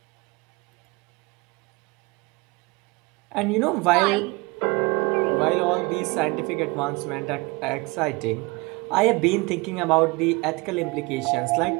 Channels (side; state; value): left; quieter; 25.9 dB